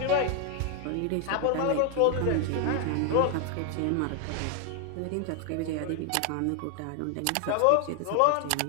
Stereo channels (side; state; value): both; different; correlation 0.00